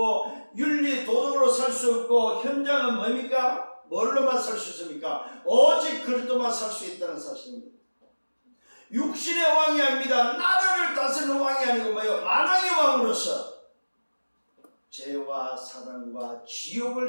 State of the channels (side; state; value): both; inverted; correlation -1.00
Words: 윤리 도덕으로 살 수 없고, 현장은 뭡니까? 뭘로만 살 수 있습니까? 오직 그리스도만 살 수 있다는 사실입니다. 육신의 왕이 아닙니다. 나라를 다스리는 왕이 아니고 뭐예요? 만왕의 왕으로서 죄와 사랑과